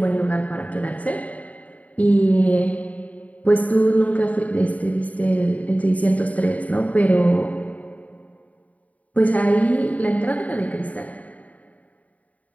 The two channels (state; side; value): late; right; 0.070 ms